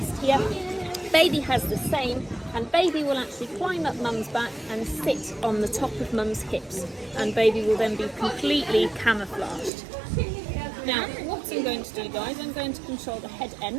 here. Baby has the same, and baby will actually climb up mum's back and sit on the top of mum's hips, and baby will then be completely camouflaged. Now, what I'm going to do, guys, I'm going to control the head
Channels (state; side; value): drops out; left; at 9.7 s